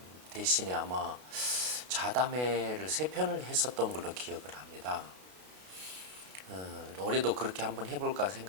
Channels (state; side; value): late; left; 32 ms